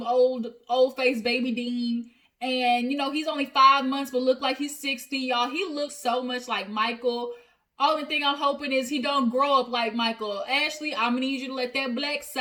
old face baby Dean. And, you know, he's only 5 months, but look like he's 60, y'all. He looks so much like Michael. Only thing I'm hoping is he don't grow up like Michael. Ashley, I'm gonna need you to let that black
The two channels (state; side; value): identical; both; correlation 1.00